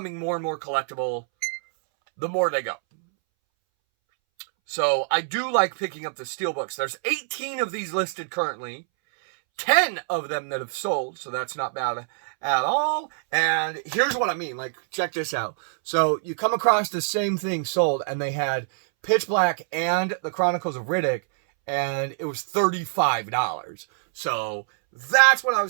more and more collectible the more they go. So I do like picking up the steelbooks. There's 18 of these listed currently, 10 of them that have sold, so that's not bad at all. And here's what I mean, like, check this out. So you come across the same thing sold, and they had Pitch Black and the Chronicles of Riddick, and it was $35. So that's what I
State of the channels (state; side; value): silent; left; 62 dB below the other